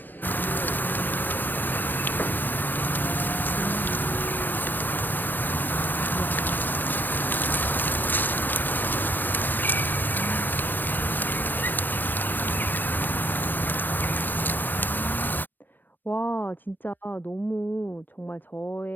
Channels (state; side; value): late; right; 0.092 ms